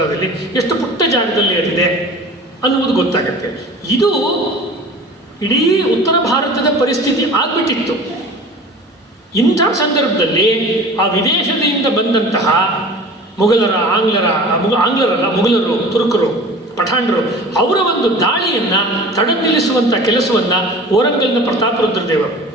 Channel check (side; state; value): both; normal; correlation 0.41